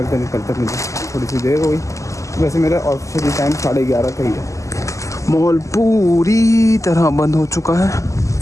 मुझे थोड़ी सी देर हो गई। वैसे मेरा ऑफिशियली टाइम 11:30 का ही है। मॉल पूरी तरह बंद हो चुका है,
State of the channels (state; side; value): late; right; 0.16 ms